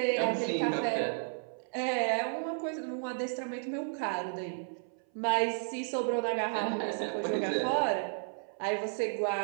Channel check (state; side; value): silent; left; 56 dB below the other